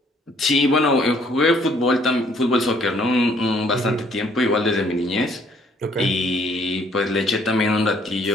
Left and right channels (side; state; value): both; normal; correlation 0.63